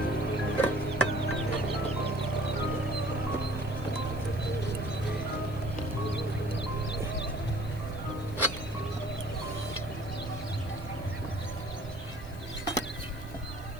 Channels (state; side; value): noise; left; hiss, 22 dB below the sound